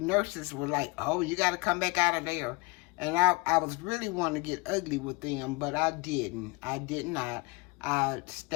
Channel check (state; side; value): quieter; right; 26.0 dB